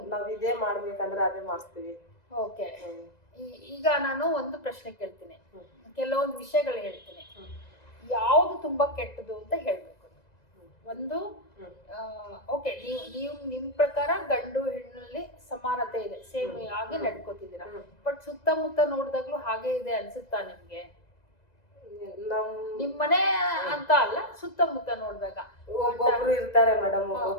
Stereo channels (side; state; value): right; late; 2.0 ms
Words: ನಾವ್ ಇದೇ ಮಾಡ್ಬೇಕಂದ್ರೆ ಅದೇ ಮಾಡ್ತೀವಿ. ಓಕೆ. ಈಗ ನಾನು ಒಂದು ಪ್ರಶ್ನೆ ಕೇಳ್ತೀನಿ, ಕೆಲವೊಂದು ವಿಷಯಗಳು ಹೇಳ್ತೀನಿ, ಯಾವ್ದು ತುಂಬಾ ಕೆಟ್ಟದು ಅಂತ ಹೇಳ್ಬೇಕು. ಒಂದು, ಓಕೆ, ನೀವು ನಿಮ್ ಪ್ರಕಾರ ಗಂಡು ಹೆಣ್ಣಲ್ಲಿ ಸಮಾನತೆ ಇದೆ, ಸೇಮ್ ಆಗಿ ನಡ್ಕೋತಿದ್ದೀರಾ. ಬಟ್ ಸುತ್ತಮುತ್ತ ನೋಡಿದಾಗ್ಲೂ ಹಾಗೆ ಇದೆ ಅನ್ಸುತ್ತಾ ನಿಮ್ಗೆ? ನಿಮ್ಮನೆ ಅಂತ ಅಲ್ಲ, ಸುತ್ತಮುತ್ತ ನೋಡಿದಾಗ ಒಬ್ಬೊಬ್ರು ಇರ್ತಾರೆ ಮೇಡಮ್,